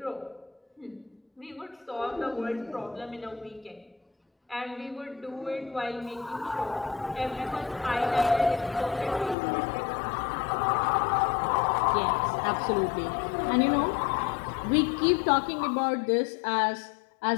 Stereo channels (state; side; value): drops out; right; at 9.3 s